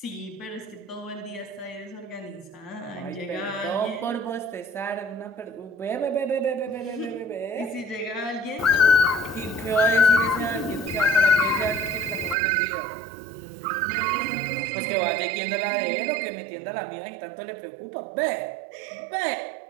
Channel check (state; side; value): drops out; left; at 12.4 s